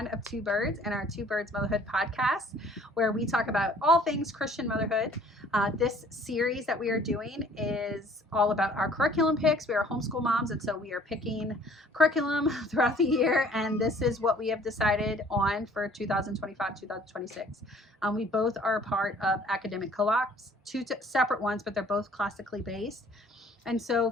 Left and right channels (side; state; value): both; normal; correlation 0.56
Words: of two birds in our Two Birds Motherhood podcast, where we talk about all things Christian motherhood. This series that we are doing is all about our curriculum picks. We are homeschool moms, and so we are picking curriculum throughout the year, and this is what we have decided on for 2025-2026. We both are a part of academic co-ops, two separate ones, but they're both classically based. And so